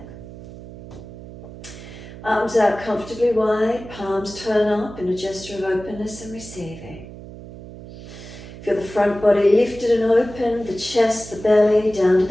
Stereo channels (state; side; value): noise; right; hum, 15 dB below the sound